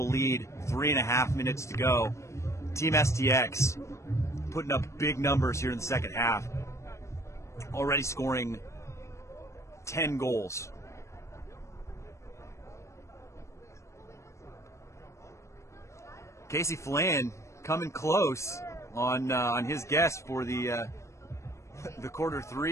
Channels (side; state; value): right; late; 0.14 ms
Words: lead, 3.5 minutes to go. Team STX putting up big numbers here in the second half. Already scoring 10 goals. Casey Flan coming close on his guess for the quarter